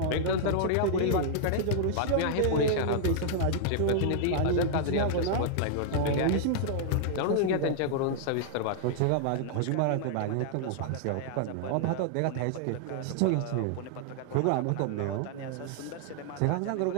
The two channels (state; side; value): different; both; correlation -0.01